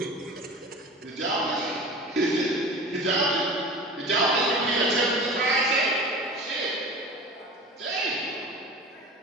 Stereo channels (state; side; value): normal; both; correlation 0.36